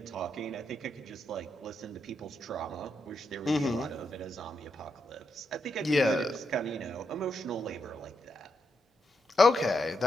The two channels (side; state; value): both; normal; correlation 0.82